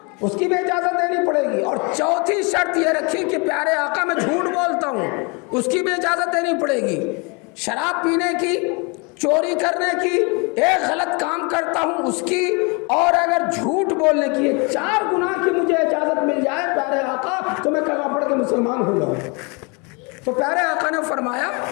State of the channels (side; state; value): right; quieter; 31.1 dB